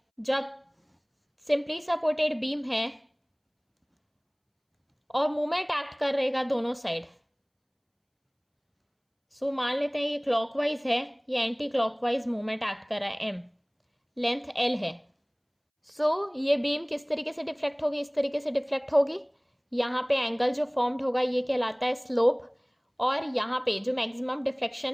जब सिंपली सपोर्टेड बीम है और मूवमेंट एक्ट कर रहेगा दोनों साइड। सो मान लेते हैं ये क्लॉकवाइज है, ये एंटी क्लॉकवाइज मूवमेंट एक्ट कर रहा है, M लेंथ L है। सो ये बीम किस तरीके से डिफ्लेक्ट होगी, इस तरीके से डिफ्लेक्ट होगी, यहाँ पे एंगल जो फॉर्म्ड होगा ये कहलाता है स्लोप, और यहाँ पे जो मैक्सिमम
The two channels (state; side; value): identical; both; correlation 1.00